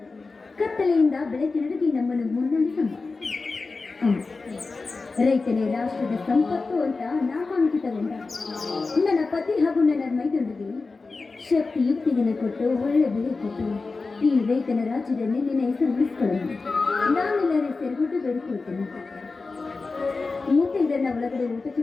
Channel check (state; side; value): quieter; right; 3.9 dB